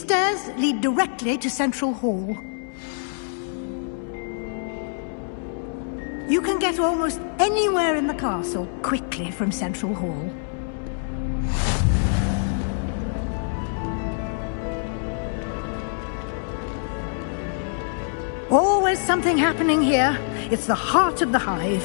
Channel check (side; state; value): right; silent; digital silence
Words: lead directly to Central Hall. You can get almost anywhere in the castle quickly from Central Hall. Always something happening here. It's the heart of the